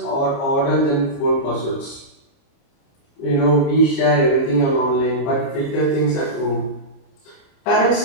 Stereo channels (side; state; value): right; late; 29 ms